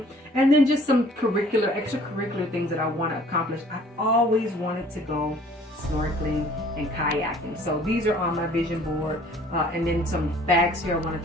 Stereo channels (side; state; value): both; normal; correlation 0.54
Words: and then just some extracurricular things that I want to accomplish. I've always wanted to go snorkeling and kayaking, so these are on my vision board. And then some bags here. I want